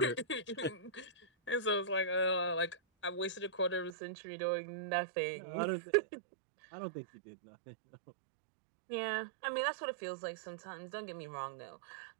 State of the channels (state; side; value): drops out; left; at 4.0 s